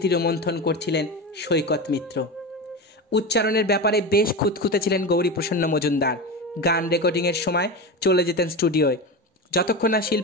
রোমন্থন করছিলেন সৈকত মিত্র। উচ্চারণের ব্যাপারে বেশ খুঁতখুঁতে ছিলেন গৌরীপ্রসন্ন মজুমদার। গান রেকর্ডিংয়ের সময় চলে যেতেন স্টুডিওয়। যতক্ষণ না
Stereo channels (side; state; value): both; normal; correlation 0.23